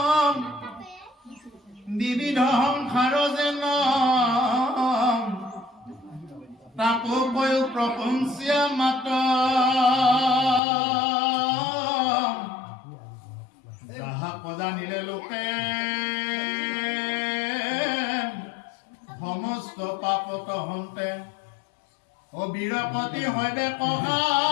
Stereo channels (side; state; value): right; drops out; at 10.6 s